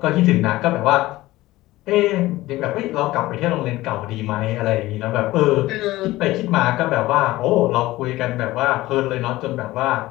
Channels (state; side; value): quieter; right; 17.6 dB